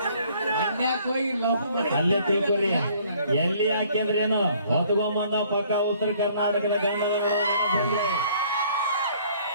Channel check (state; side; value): inverted; both; correlation -0.59